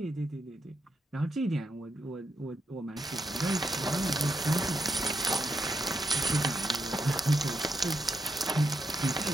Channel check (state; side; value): normal; both; correlation 0.81